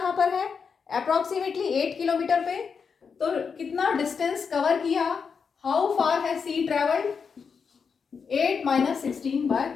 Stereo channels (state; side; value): quieter; right; 5.9 dB